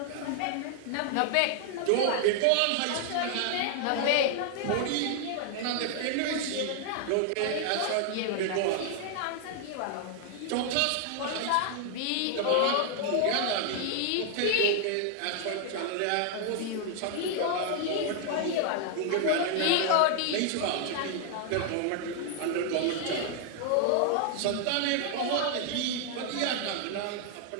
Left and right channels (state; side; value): different; both; correlation 0.00